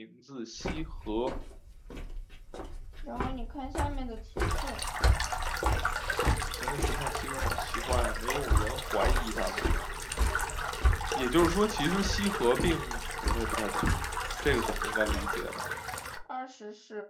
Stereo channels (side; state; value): both; identical; correlation 1.00